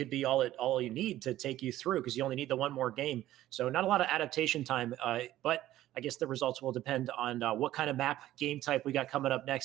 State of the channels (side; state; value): left; quieter; 14.2 dB